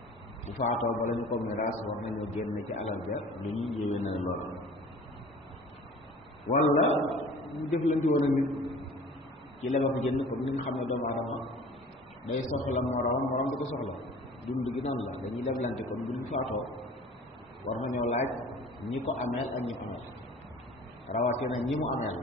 bu faatoo ba lañu ko miraas war nañoo génn ci alal ja lu ñuy yéwee na lool wala ñu jëflanti woon a nit ci leba ko jënd ko ni nga xam ne doomu aadama day soxla morom di ko soxla dund gi noonu la dañuy leblante kon bu ñu faatoo war nañoo laaj ñi ko ameel ak ñi ko ameel rawatina ñi mu ameel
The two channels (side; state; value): both; normal; correlation 0.45